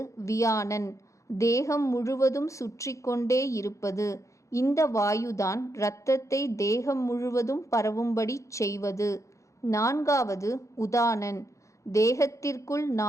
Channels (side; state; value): right; late; 0.15 ms